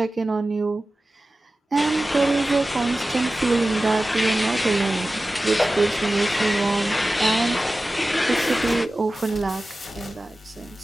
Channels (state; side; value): normal; both; correlation 0.95